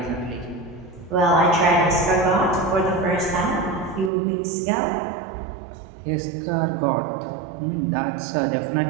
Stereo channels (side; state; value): left; drops out; at 4.1 s